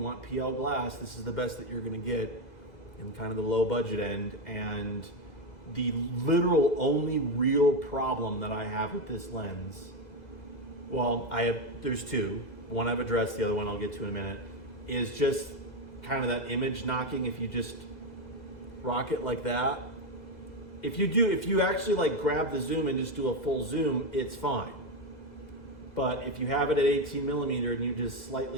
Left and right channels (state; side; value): late; right; 2.0 ms